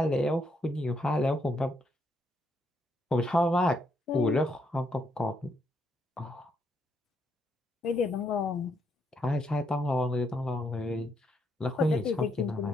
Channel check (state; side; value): normal; both; correlation 0.76